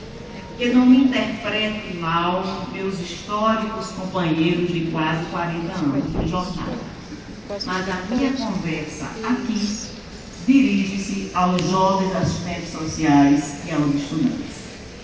Que não me interprete mal meus históricos companheiros de quase 40 anos de jornada. Mas a minha conversa aqui dirige-se aos jovens assistentes sociais e aos estudantes.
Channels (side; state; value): both; identical; correlation 1.00